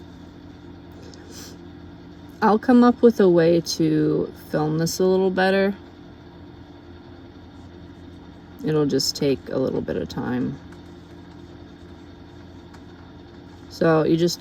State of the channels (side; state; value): both; identical; correlation 1.00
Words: I'll come up with a way to film this a little better. It'll just take a little bit of time. So you just